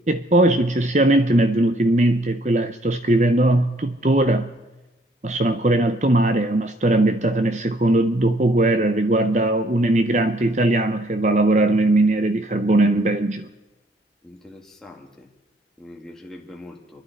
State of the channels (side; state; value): both; normal; correlation 0.64